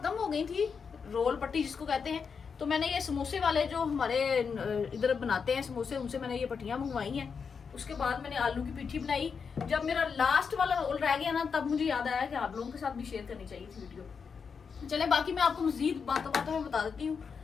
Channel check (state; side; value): quieter; right; 5.9 dB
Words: हो गई थी, रोल पट्टी जिसको कहते हैं। तो मैंने ये समोसे वाले जो हमारे इधर बनाते हैं समोसे, उनसे मैंने ये पट्टियां मंगवाई हैं। उसके बाद मैंने आलू की पिट्ठी बनाई। जब मेरा लास्ट वाला रोल रह गया ना, तब मुझे याद आया कि आप लोगों के साथ भी शेयर करनी चाहिए थी वीडियो। चले बाकी मैं आपको मजीद बातों बातों में बता देती हूँ।